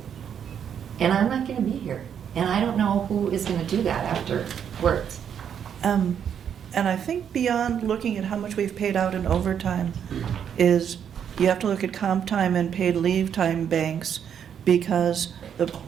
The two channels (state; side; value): quieter; left; 8.4 dB